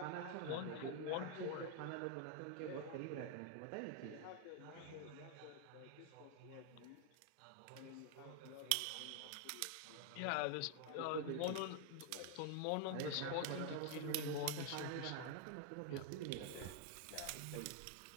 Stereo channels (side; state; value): both; different; correlation 0.00